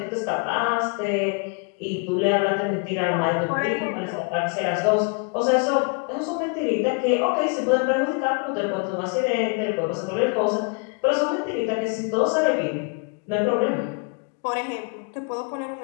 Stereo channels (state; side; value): quieter; right; 36.8 dB